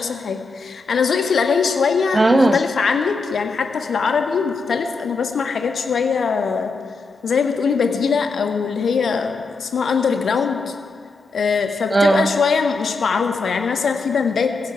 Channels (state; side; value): quieter; right; 3.6 dB